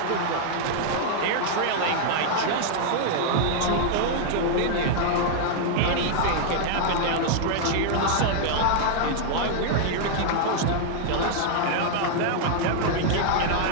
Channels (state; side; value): different; both; correlation -0.01